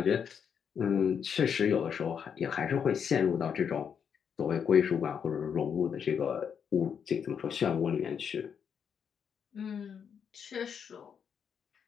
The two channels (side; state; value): right; quieter; 7.4 dB